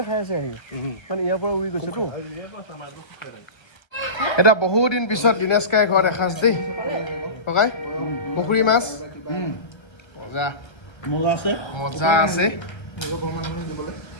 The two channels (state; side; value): late; right; 1.3 ms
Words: খাই আছে আহি মানে ইয়াৰ পৰা উৰি গৈছেতো এটা বহুদিন পিছত দিনেশকাই ঘৰত এসাঁজ দেই ককাই পুখুৰী মাছ মজা মজা আছে